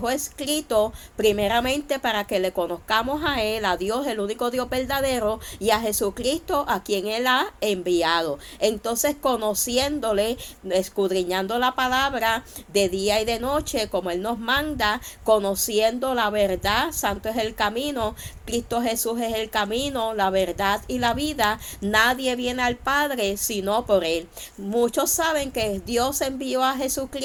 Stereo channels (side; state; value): both; identical; correlation 1.00